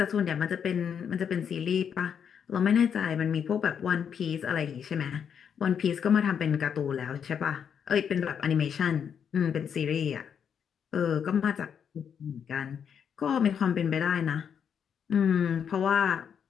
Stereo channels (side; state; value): right; quieter; 7.7 dB